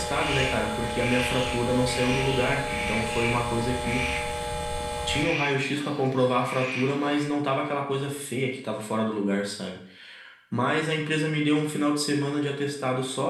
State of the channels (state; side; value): identical; both; correlation 1.00